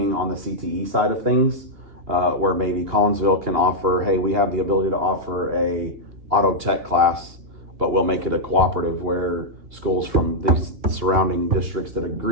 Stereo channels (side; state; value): left; late; 2.8 ms